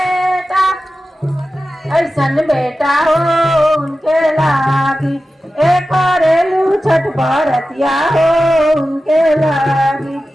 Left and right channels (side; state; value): both; normal; correlation 0.94